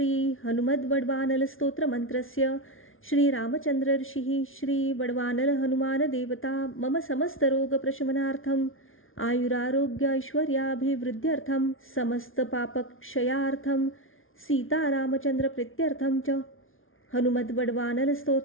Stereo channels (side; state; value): right; late; 0.59 ms